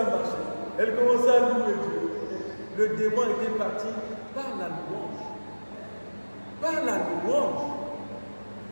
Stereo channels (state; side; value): inverted; both; correlation -1.00